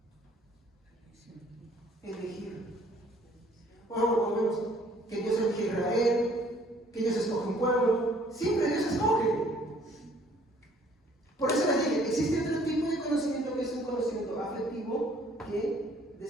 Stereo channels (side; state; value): both; normal; correlation 0.60